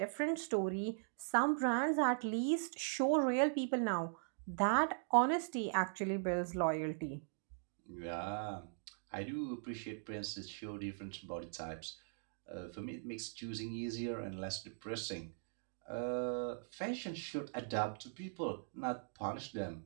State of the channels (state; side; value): silent; left; digital silence